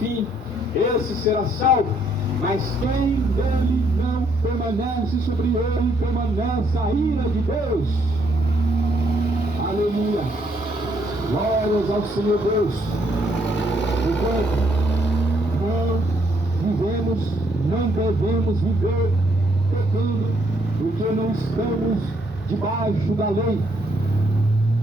esse será salvo. Mas quem dele não permanece, sobre ele permanece a ira de Deus. Aleluia. Glórias ao Senhor Deus. Enquanto não devemos viver pecando, porque não estamos debaixo da lei.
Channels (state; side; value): normal; both; correlation 0.71